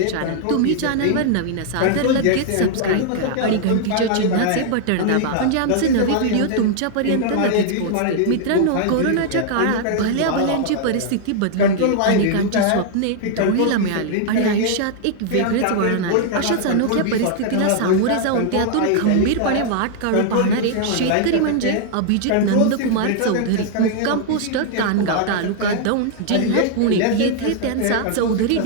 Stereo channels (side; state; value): both; different; correlation -0.01